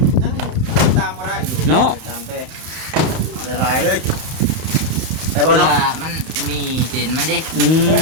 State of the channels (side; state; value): left; late; 31 ms